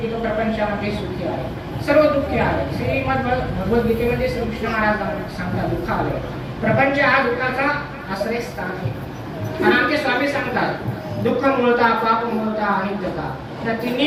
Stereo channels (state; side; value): identical; both; correlation 1.00